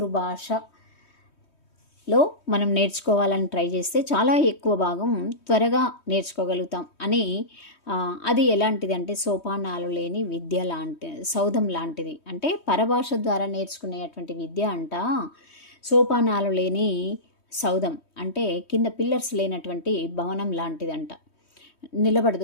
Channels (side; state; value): right; late; 3.2 ms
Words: మనం నేర్చుకోవాలని ట్రై చేస్తే చాలా ఎక్కువ భాగం త్వరగా నేర్చుకోగలుగుతాం అని. అది ఎలాంటిది అంటే సోపానాలు లేని విద్య సౌధం లాంటిది. అంటే పరభాష ద్వారా నేర్చుకునేటువంటి విద్య అంట సోపానాలు లేని సౌధం, అంటే కింద పిల్లర్స్ లేనటువంటి భవనం లాంటిదంట,